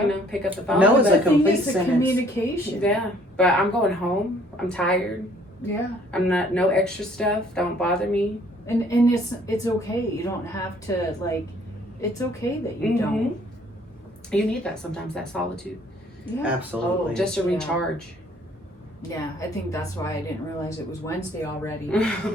you know, pick up the phone. No is but- a complete it's a sentence. communication. Yeah, but I'm going home. I'm tired. Yeah, I'm not, no extra stuff. Don't bother me. and it's okay. You don't have to, like. It's okay that you don't. You need that sometimes, that solitude, Yeah. Absolutely. just to Yeah. recharge. Yeah, I think that's why I didn't realize it was Wednesday already.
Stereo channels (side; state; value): both; normal; correlation 0.60